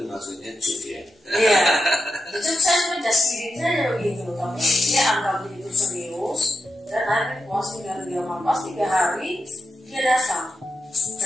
maksudnya cuk ya. Iya, itu saya cuma just kidding saja begitu, tapi dia anggap itu serius. Dan akhirnya puasa 3 malam, pas 3 hari dia datang.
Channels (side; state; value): both; normal; correlation 0.88